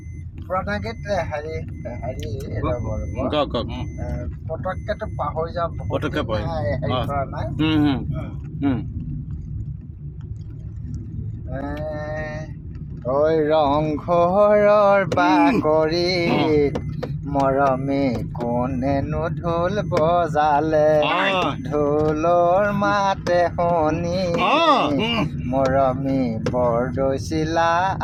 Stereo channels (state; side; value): identical; both; correlation 1.00